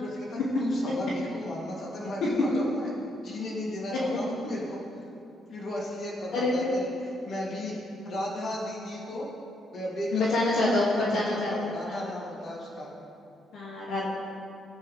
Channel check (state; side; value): normal; both; correlation 0.74